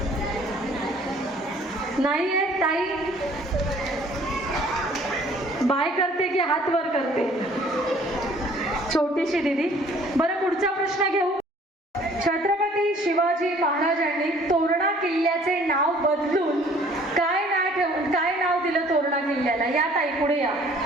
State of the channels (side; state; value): both; normal; correlation 0.56